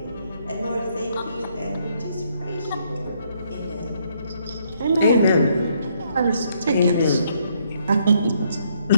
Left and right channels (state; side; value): inverted; both; correlation -0.70